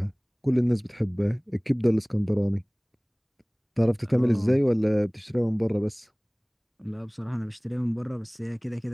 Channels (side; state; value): both; identical; correlation 1.00